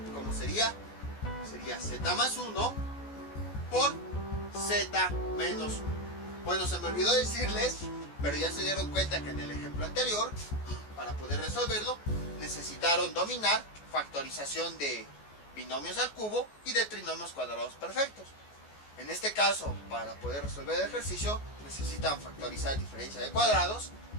como sería sería z más 1 por z menos 1. Bueno, se me olvidó decirles, pero ya se dieron cuenta que en el ejemplo anterior, para poder resolverlo, necesitaron dominar factorización de binomios al cubo y de trinomios cuadrados perfectos. En este caso, para poder resolver el ejercicio, necesitan factorizar diferencia de cuadrados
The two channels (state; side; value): late; right; 14 ms